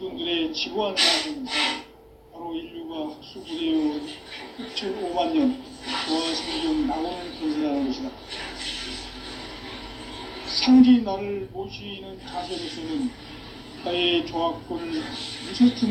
지구한 사람은 바로 인류가 학수부대요 6,5만 년 조화 성경 낙원을 건설하는 것이다. 상제인 나를 모시는 자세로서는 나의 조화권을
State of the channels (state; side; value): identical; both; correlation 1.00